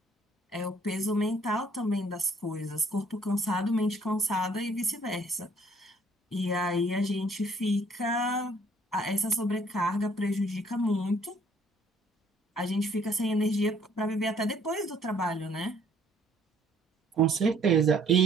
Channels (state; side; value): normal; both; correlation 0.61